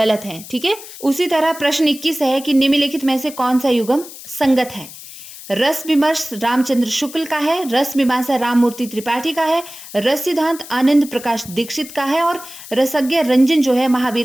हैं, ठीक है। उसी तरह प्रश्न 21 है कि निम्नलिखित में से कौन सा युग्म संगत है? रस विमर्श रामचंद्र शुक्ल का है, रस मीमांसा राममूर्ति त्रिपाठी का है, रस सिद्धांत आनंद प्रकाश दीक्षित का है और रसज्ञ रंजन जो है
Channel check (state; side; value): noise; left; hiss, 15 dB below the sound